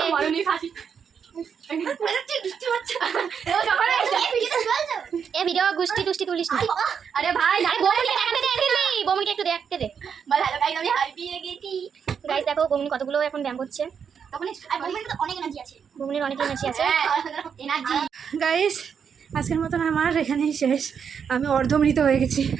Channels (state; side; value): quieter; left; 7.0 dB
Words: এ ভিডিও গুষ্টি টুষ্টি তুলিস না। আরে ভাই বমুনকে দেখাতে দে, দিল্লি বমুনকে একটু দেখতে দে। বল হ্যালো গাইস, আমি হারিয়ে গেছি। গাইস দেখো বমুন কতগুলো এখন ব্যায়াম করছে। বমুনের অনেক এনার্জি আছে, বমুনের অনেক এনার্জি আছে। এনার্জি গাইস আজকের মতন আমার এখানেই শেষ। আমি অর্ধমৃত হয়ে গেছি।